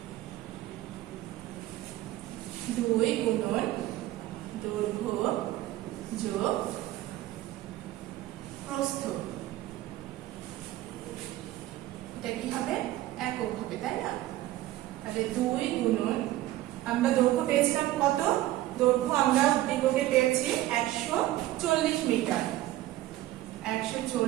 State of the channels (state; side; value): quieter; left; 15.4 dB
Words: 2 গুণন দৈর্ঘ্য যোগ প্রস্থ। এটা কি হবে, একক হবে, তাই না? তাহলে 2 গুণন, আমরা দৈর্ঘ্য পেয়েছিলাম কত, দৈর্ঘ্য আমরা উদ্দীপকে পেয়েছি 140 মিটার।